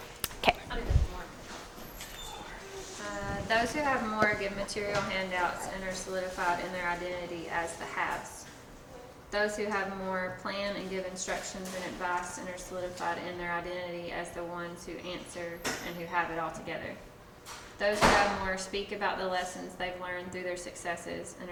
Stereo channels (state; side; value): identical; both; correlation 1.00